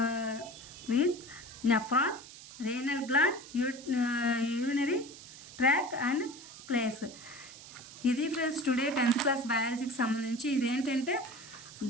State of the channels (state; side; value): noise; right; hiss, 16 dB below the sound